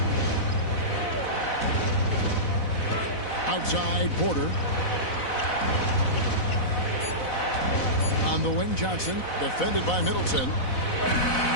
Outside Porter. On the wing, Johnson, defended by Middleton.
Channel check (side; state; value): right; late; 4.0 ms